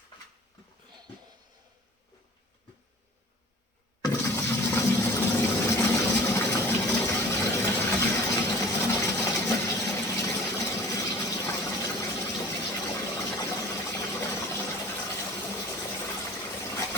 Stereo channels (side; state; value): both; normal; correlation 0.44